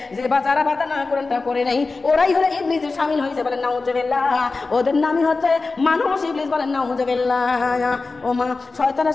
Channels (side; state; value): right; quieter; 3.9 dB